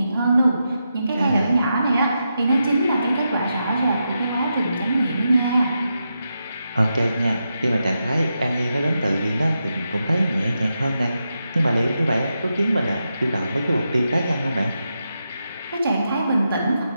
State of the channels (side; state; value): both; inverted; correlation -0.86